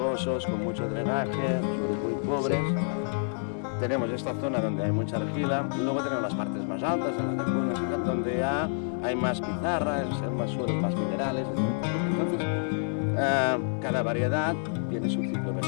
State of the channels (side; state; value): right; silent; 59 dB below the other